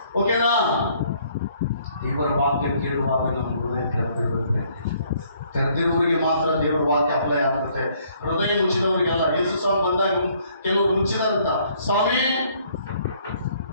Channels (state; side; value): inverted; both; correlation -0.64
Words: ಓಕೆನಾ? ಇವರ ವಾಕ್ಯ ಕೇಳುವಾಗ ನಮ್ಮ ಹೃದಯ ತೆರೆದಿರುತ್ತೆ. ತೆರೆದಿರುವವರಿಗೆ ಮಾತ್ರ ದೇವರ ವಾಕ್ಯ ಅಪ್ಲೈ ಆಗುತ್ತೆ. ಹೃದಯ ಮುಚ್ಚಿದವರಿಗೆಲ್ಲ. ಯೇಸು ಸ್ವಾಮಿ ಬಂದಾಗ ಕೆಲವರು ಮುಚ್ಚಿದಾರಂತ, ಸ್ವಾಮಿ